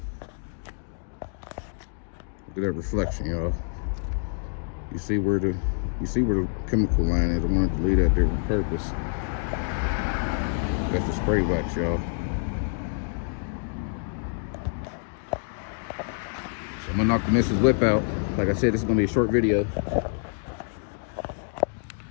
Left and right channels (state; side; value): silent; right; digital silence